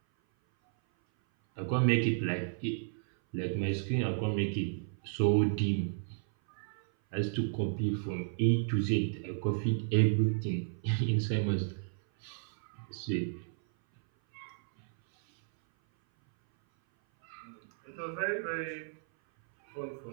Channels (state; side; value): silent; left; 56 dB below the other